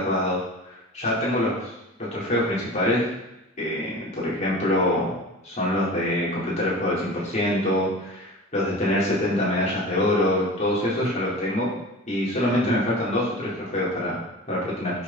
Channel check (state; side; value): normal; both; correlation 0.36